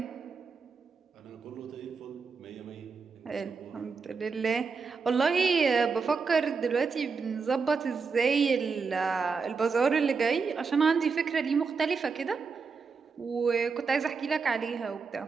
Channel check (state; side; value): quieter; left; 5.1 dB